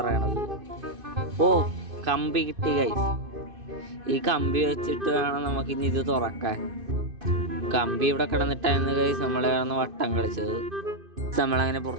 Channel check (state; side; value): late; left; 2.5 ms